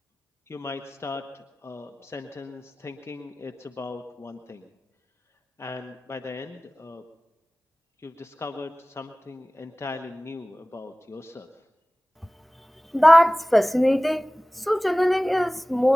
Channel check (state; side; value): normal; both; correlation 0.98